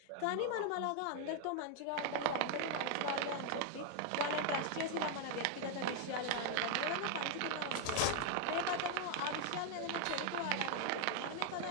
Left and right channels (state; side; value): different; both; correlation 0.00